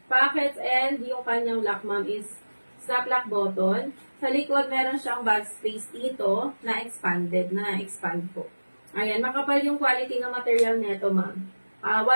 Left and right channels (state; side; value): inverted; both; correlation -1.00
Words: pockets, and yung kanyang lock, ma'am, is snap lock button. Sa likod, meron siyang bag space dito na expand po. Ayan, makapal yung quality ng material nito, ma'am.